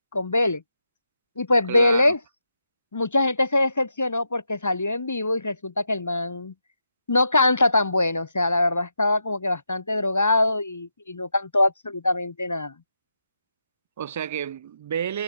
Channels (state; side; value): inverted; both; correlation -0.85